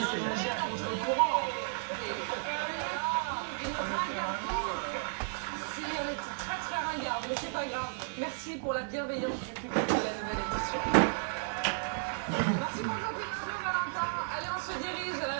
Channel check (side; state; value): left; silent; digital silence